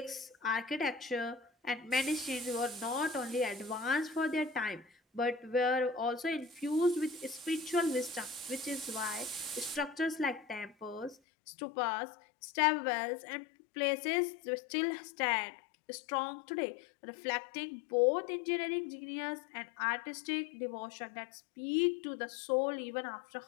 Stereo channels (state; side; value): drops out; right; at 11.2 s